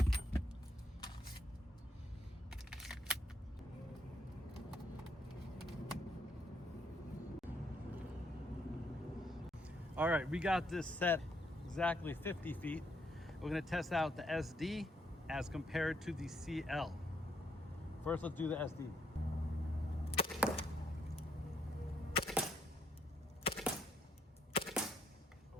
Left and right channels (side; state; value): both; normal; correlation 0.73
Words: All right, we got this set exactly 50 feet. We're gonna test out the SD as compared to the CL. First, let's do the SD.